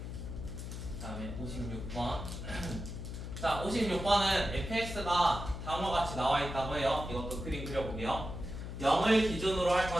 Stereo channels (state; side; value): noise; left; hum, 7 dB below the sound